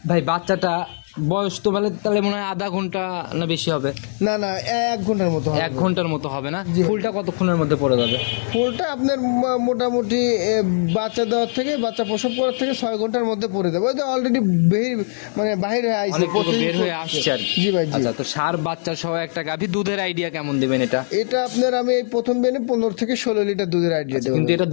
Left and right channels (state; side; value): silent; right; digital silence